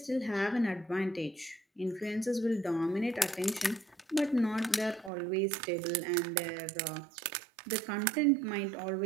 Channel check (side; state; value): left; drops out; at 5.1 s